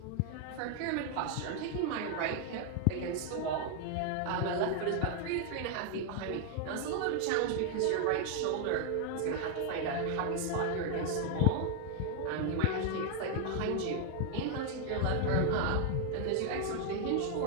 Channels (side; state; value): both; different; correlation 0.00